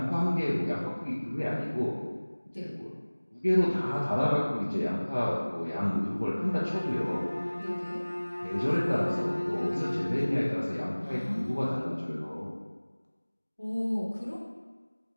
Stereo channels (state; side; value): inverted; both; correlation -1.00